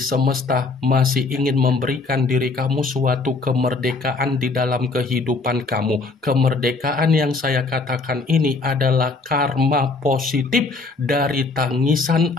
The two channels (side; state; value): right; quieter; 3.8 dB